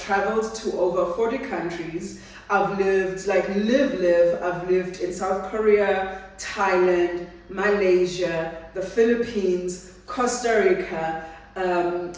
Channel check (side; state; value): both; identical; correlation 1.00